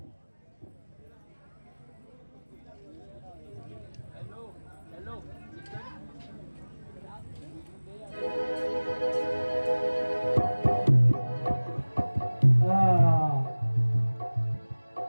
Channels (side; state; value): both; inverted; correlation -1.00